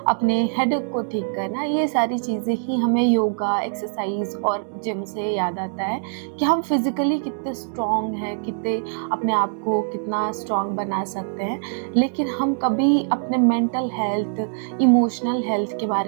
अपने हेडेक को ठीक करना, ये सारी चीज़ें ही हमें योगा, एक्सरसाइज और जिम से याद आता है कि हम फिज़िकली कितने स्ट्रॉन्ग हैं, कितने अपने आप को कितना स्ट्रॉन्ग बना सकते हैं। लेकिन हम कभी अपने मेंटल हेल्थ, इमोशनल हेल्थ के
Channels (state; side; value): silent; left; 63 dB below the other